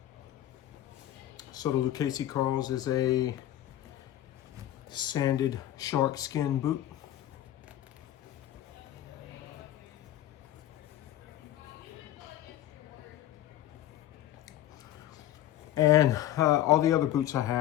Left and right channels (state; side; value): quieter; right; 12.9 dB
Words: So the Lucchese Carls is a sanded shark skin boot. And all the other boots I